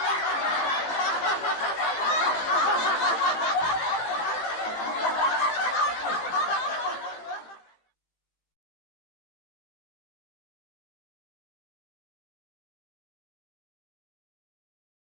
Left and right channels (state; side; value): late; right; 18 ms